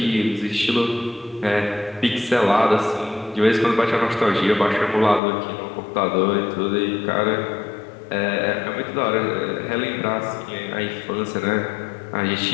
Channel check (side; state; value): right; drops out; at 5.2 s